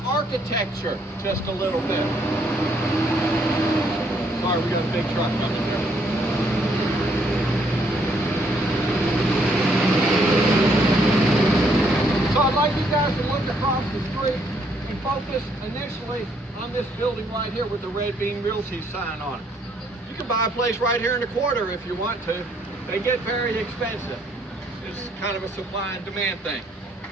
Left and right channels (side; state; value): both; normal; correlation 0.69